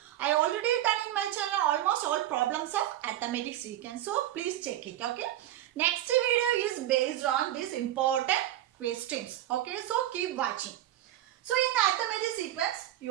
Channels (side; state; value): left; quieter; 13.3 dB